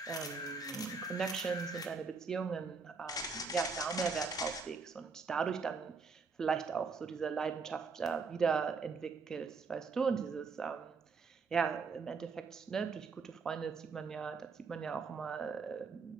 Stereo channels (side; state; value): left; quieter; 4.8 dB